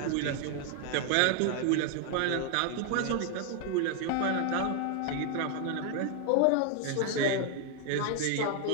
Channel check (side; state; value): both; different; correlation 0.00